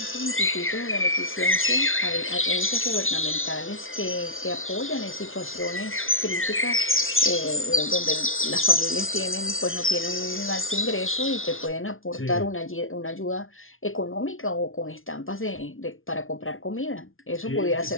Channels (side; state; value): right; late; 0.59 ms